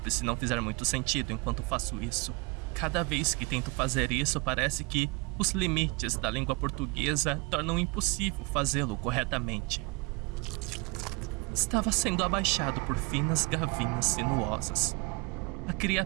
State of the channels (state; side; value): quieter; left; 26.3 dB